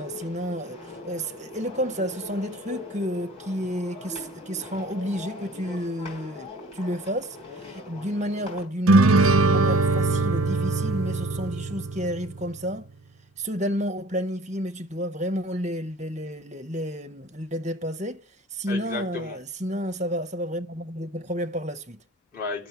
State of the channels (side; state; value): both; normal; correlation 0.48